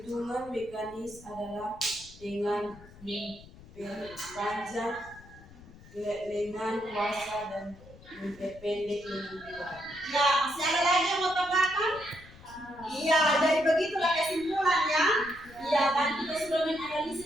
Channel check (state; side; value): noise; left; rumble, 21 dB below the sound